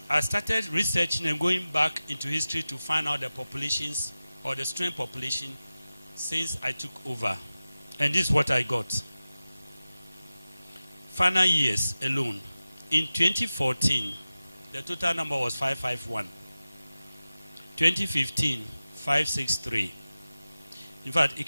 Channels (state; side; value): inverted; both; correlation -0.95